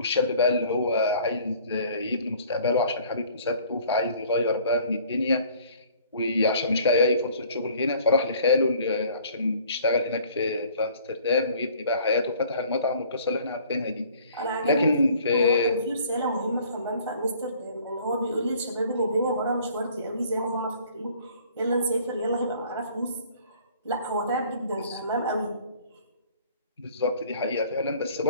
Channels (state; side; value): inverted; both; correlation -0.54